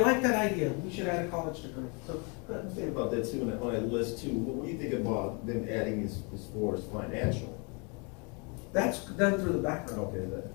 that idea. We should add a college degree. So, Think about that too, on that list too. What do you think about them adding as far as financial? that's done through the background. Okay,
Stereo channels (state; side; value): quieter; right; 33.3 dB